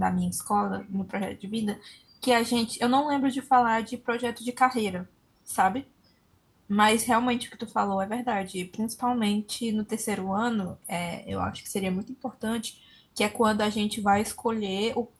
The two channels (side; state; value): both; identical; correlation 1.00